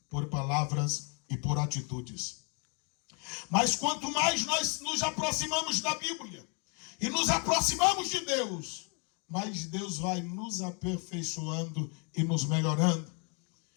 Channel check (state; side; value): quieter; right; 35.5 dB